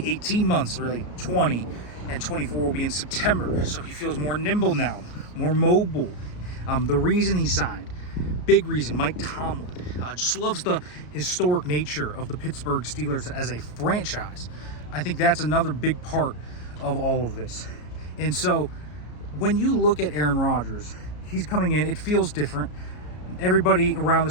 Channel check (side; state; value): right; late; 33 ms